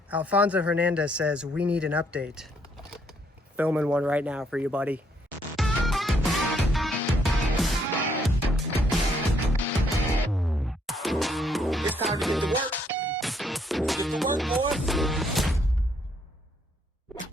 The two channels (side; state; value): both; normal; correlation 0.70